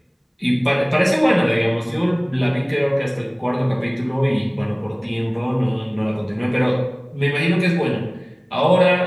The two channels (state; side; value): identical; both; correlation 1.00